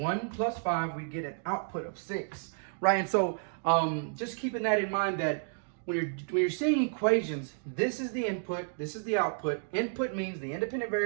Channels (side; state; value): left; silent; digital silence